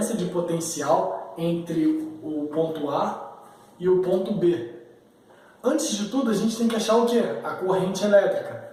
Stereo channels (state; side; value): identical; both; correlation 1.00